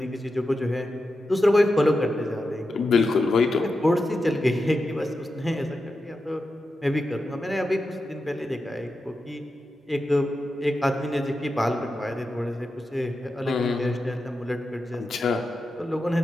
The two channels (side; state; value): both; normal; correlation 0.90